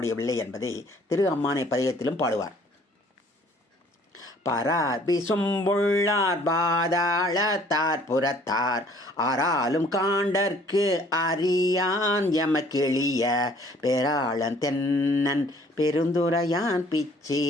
என்பதை திரு அம்மானை பதிகத்திலும் பாடுவார். பரார் விசும்புள்ளார் பாதாளத்தார் புறத்தார் ஆறாலும் காண்டற்கு அறியான் எமக்கெளிய பேராளன் தென்னன் பெருந்துரையான்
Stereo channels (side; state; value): both; normal; correlation 0.57